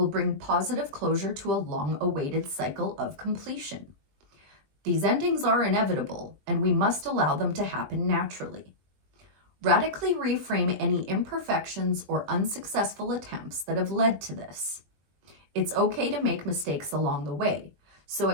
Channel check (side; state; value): left; late; 20 ms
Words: bring positive closure to a long-awaited cycle of completion. These endings are inevitable, and we must allow them to happen naturally. Radically reframe any imperfections or unsuccessful attempts that have led to this. It's okay to make mistakes along the way, so